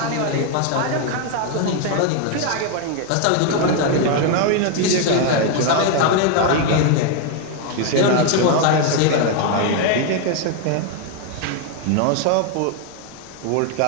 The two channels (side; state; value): both; different; correlation 0.01